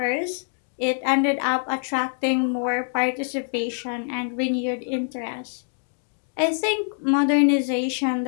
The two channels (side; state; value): right; silent; digital silence